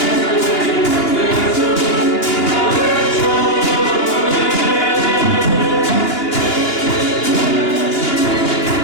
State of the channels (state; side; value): late; right; 2.8 ms